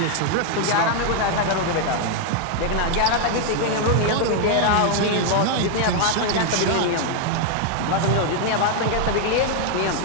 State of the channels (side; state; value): both; different; correlation 0.00